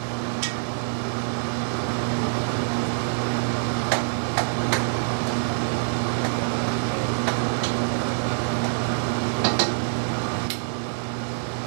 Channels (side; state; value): left; silent; 61 dB below the other